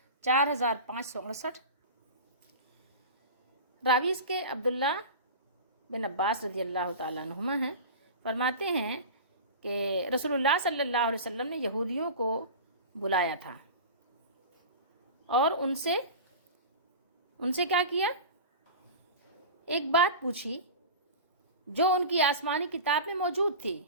4568۔ راوی اس کے عبداللہ بن عباس رضی اللہ تعالیٰ عنہما ہیں، فرماتے ہیں کہ رسول اللہ صلی اللہ علیہ وسلم نے یہودیوں کو بلایا تھا اور ان سے کیا کیا، ایک بات پوچھی جو ان کی آسمانی کتاب میں موجود تھی،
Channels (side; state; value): both; inverted; correlation -0.31